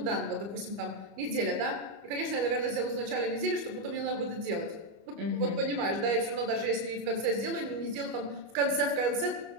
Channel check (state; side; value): late; left; 25 ms